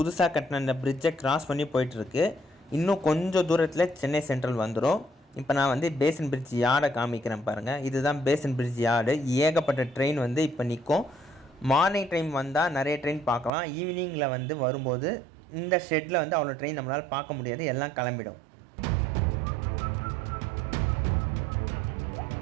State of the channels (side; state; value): left; drops out; at 13.5 s